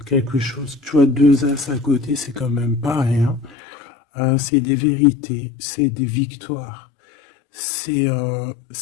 quelque chose, tu vois, 2 as à côté, c'est quand même pas rien. C'est des vérités, c'est des victoires. C'est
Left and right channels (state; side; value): drops out; right; at 3.6 s